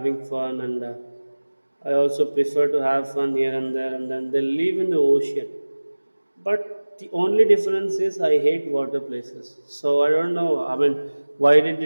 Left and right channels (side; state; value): both; inverted; correlation -1.00